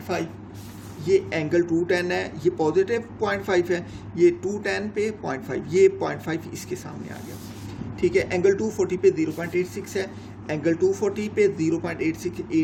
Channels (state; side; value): identical; both; correlation 1.00